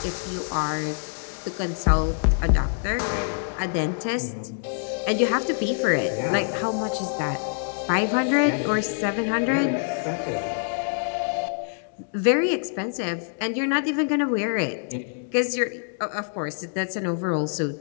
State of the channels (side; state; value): right; silent; digital silence